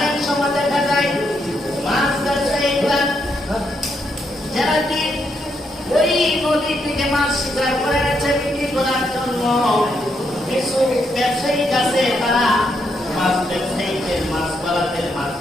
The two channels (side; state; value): both; normal; correlation 0.78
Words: সময় দেখা যায় মাছ ব্যবসায়ীরা যারা কি ওই নদী থেকে মাছ শিকার করে এনেছে বিক্রি করার জন্য, কিছু ব্যবসায়ী আছে তারা মাছ ব্যবসায়ীদের মাছ পালাদের